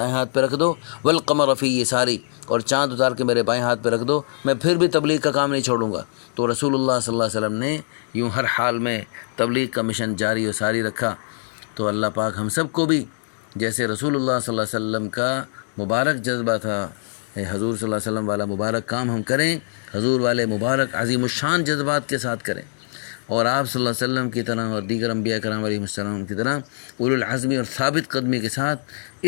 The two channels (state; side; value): silent; right; digital silence